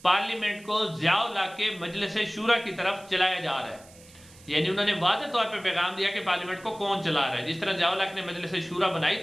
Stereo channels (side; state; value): right; noise; hiss, 23 dB below the sound